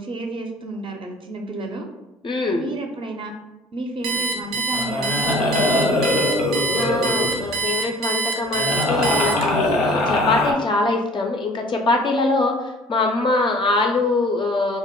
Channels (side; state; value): both; normal; correlation 0.48